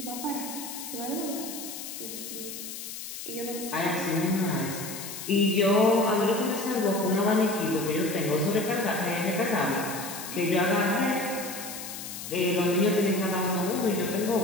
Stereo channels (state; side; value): noise; left; hiss, 9 dB below the sound